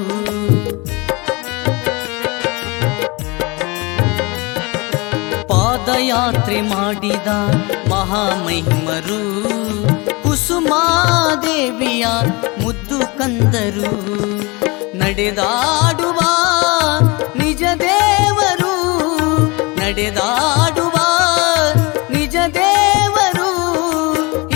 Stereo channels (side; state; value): right; quieter; 26.4 dB